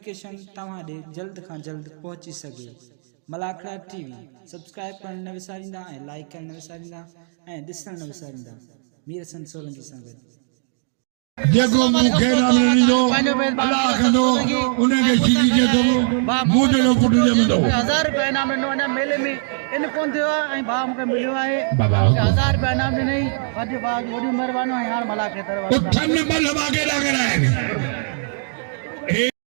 तव्हां ॾे जल्द खां जल्द पहुची सघे। मलाखड़ा टीवी सब्सक्राइब करण न विसारींदा ऐं लाइक करण न विसारींदा ऐं ॾिसण न विसारींदा। मीर हसन सोलंकी सां गॾु देखो मुखे नाम नहीं दो अल्लाह कंदो उन्हें के चीज़ के दो मुझे लोग पुट दे मदो 1000 रुपए नाम नो ना मेले में इन कोन थियो ऐं भा मूंखे मिलियो आहे 1000 रुपए नाम नहीं वॾी बात वॾी महिरबानी है यार मला के तरफ उठन बल हवा के लग रहा है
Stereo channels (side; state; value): left; silent; digital silence